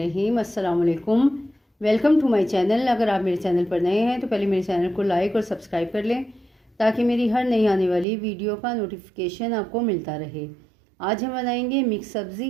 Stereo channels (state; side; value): drops out; left; at 8.1 s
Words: अस्सलाम वालेकुम। Welcome to my channel. अगर आप मेरे चैनल पर नए हैं तो पहले मेरे चैनल को लाइक और सब्सक्राइब कर लें ताकि मेरी हर नई आने वाली वीडियो का नोटिफिकेशन आपको मिलता रहे। आज हम बनाएंगे मिक्स